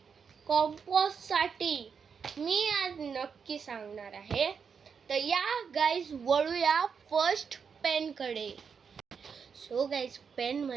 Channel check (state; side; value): quieter; left; 6.3 dB